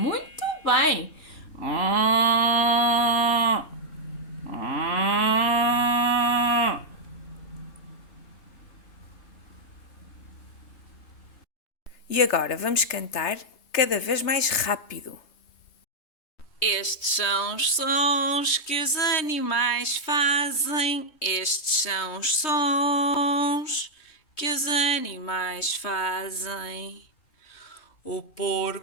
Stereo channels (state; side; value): late; right; 3.2 ms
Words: bem! E agora vamos cantar cada vez mais rápido. Estes são os sons que os animais fazem. Estes são os sons que os animais fazem. O